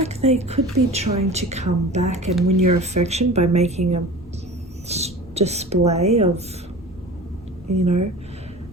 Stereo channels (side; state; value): both; normal; correlation 0.37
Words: they could be trying to come back and win your affection by making a display of, you know,